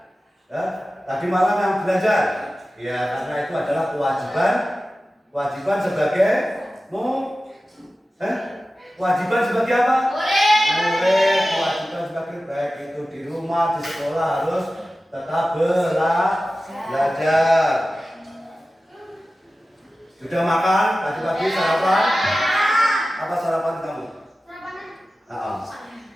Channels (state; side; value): normal; both; correlation 0.95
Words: ya, tadi malam yang belajar, ya karena itu adalah kewajiban sebagai kewajiban sebagai apa? Murid. Kewajiban sebagai baik itu di rumah, di sekolah harus tetap belajar. Sudah makan pagi-pagi sarapan? Apa sarapan kamu?